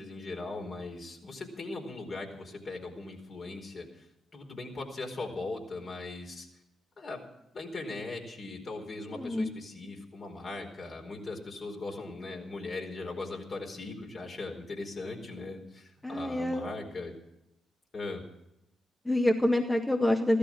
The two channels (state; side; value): normal; both; correlation 0.92